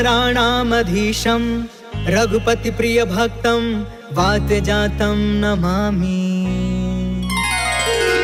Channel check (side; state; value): both; identical; correlation 1.00